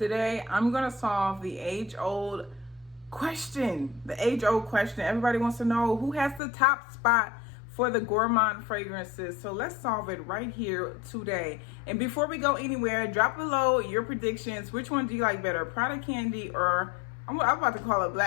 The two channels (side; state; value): right; drops out; at 6.4 s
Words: I'm going to solve the age-old question. The age-old question. Everybody wants to know who has the top spot for the gourmand fragrances. So let's solve it right here today. And before we go anywhere, drop below your predictions. Which one do you like better, Prada Candy or I'm about to call it